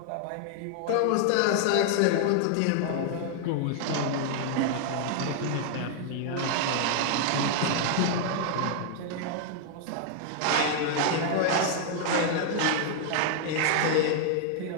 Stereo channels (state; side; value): different; both; correlation 0.00